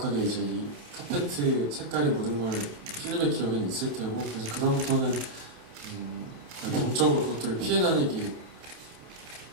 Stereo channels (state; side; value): late; left; 28 ms